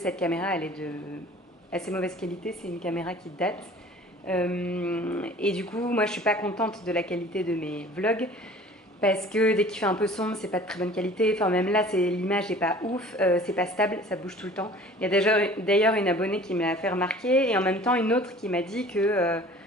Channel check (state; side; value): normal; both; correlation 0.47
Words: caméra, elle est de assez mauvaise qualité. C'est une caméra qui date. Et du coup, moi, je suis pas contente de la qualité de mes vlogs. Parce que dès qu'il fait un peu sombre, c'est pas de très bonne qualité. Enfin, même là, l'image n'est pas ouf, c'est pas stable, ça bouge tout le temps. Il y a d'ailleurs une abonnée qui me l'a fait remarquer et en même temps une autre qui m'a dit que